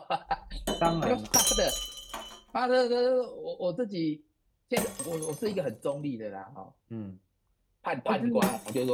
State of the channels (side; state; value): both; identical; correlation 1.00